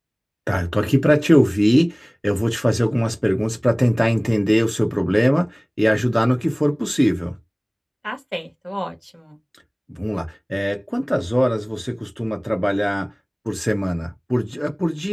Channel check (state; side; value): identical; both; correlation 1.00